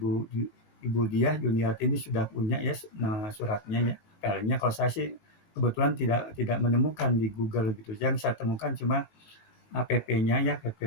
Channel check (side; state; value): right; late; 19 ms